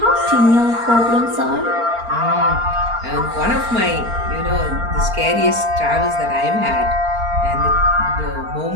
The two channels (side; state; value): left; late; 4.3 ms